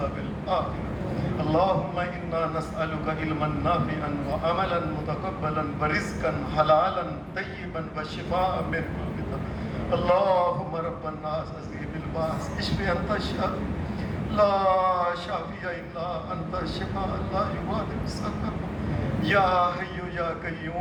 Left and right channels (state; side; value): identical; both; correlation 1.00